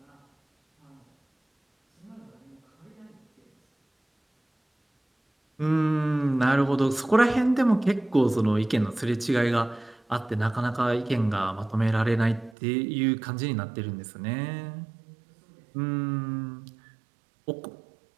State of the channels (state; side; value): drops out; left; at 12.6 s